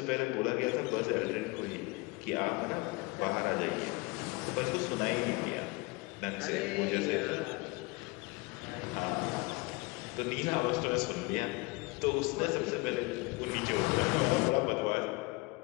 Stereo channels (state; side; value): quieter; right; 25.2 dB